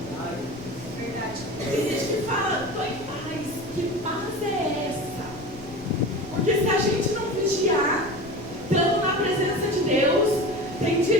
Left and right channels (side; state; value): left; noise; rumble, 18 dB below the sound